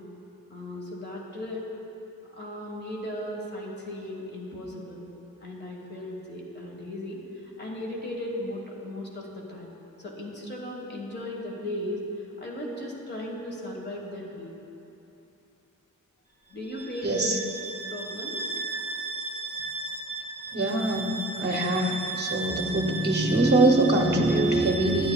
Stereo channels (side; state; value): both; normal; correlation 0.43